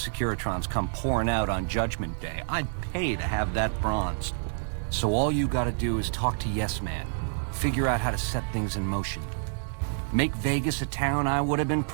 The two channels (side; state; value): left; silent; digital silence